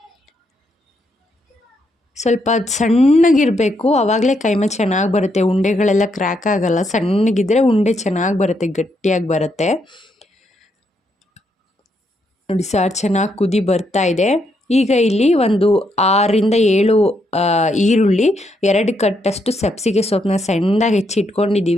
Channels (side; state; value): both; normal; correlation 0.77